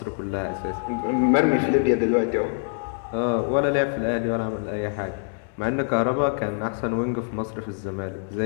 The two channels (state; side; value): silent; right; 62 dB below the other